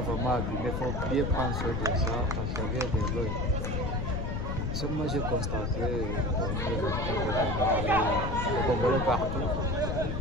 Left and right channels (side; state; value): left; noise; rumble, 1 dB below the sound